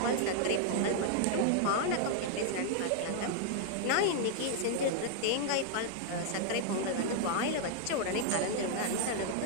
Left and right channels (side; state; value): both; different; correlation 0.00